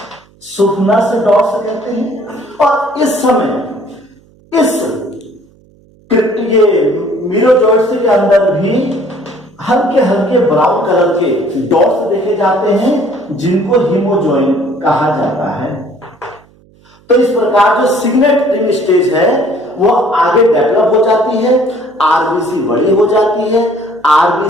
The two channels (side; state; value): right; noise; hum, 30 dB below the sound